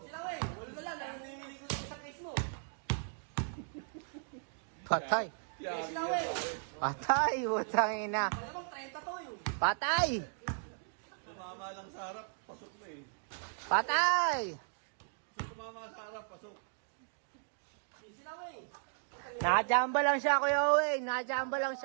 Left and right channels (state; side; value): silent; left; digital silence